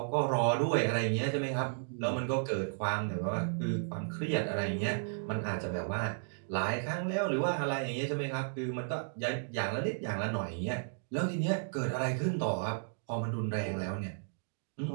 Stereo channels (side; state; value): left; silent; digital silence